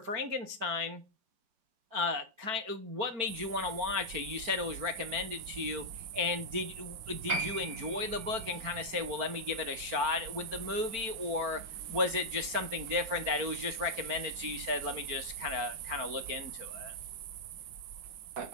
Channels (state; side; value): late; left; 4.5 ms